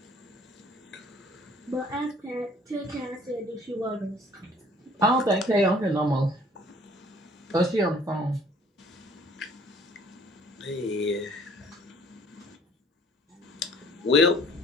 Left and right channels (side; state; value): both; normal; correlation 0.56